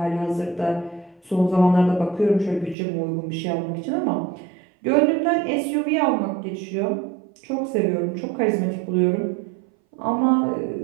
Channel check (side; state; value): left; drops out; at 2.8 s